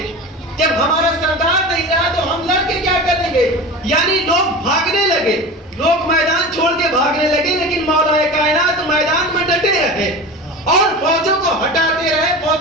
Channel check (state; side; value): normal; both; correlation 0.31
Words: جب ہمارا سردار نہیں رہا تو ہم لڑ کے کیا کریں گے. یعنی لوگ بھاگنے لگے، لوگ میدان چھوڑ کے بھاگنے لگے، لیکن مولا کائنات میدان میں ڈٹے رہے اور فوجوں کو ہٹاتے رہے،